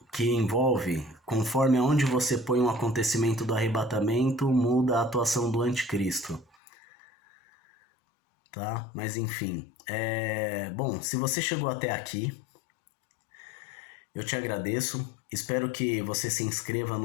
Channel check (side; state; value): right; drops out; at 6.6 s